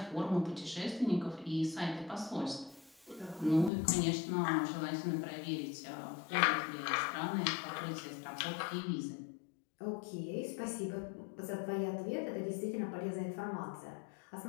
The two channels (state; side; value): drops out; right; at 3.7 s